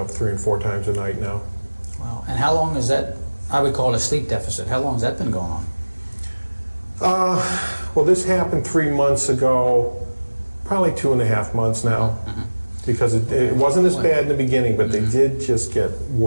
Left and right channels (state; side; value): inverted; both; correlation -1.00